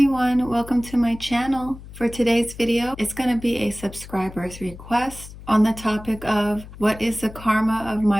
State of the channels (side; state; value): left; noise; hum, 16 dB below the sound